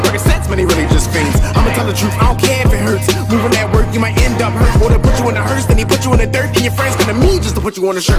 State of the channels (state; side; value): identical; both; correlation 1.00